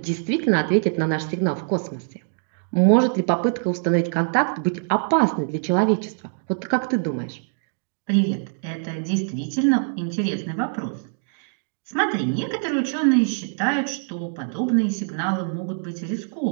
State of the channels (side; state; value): left; silent; digital silence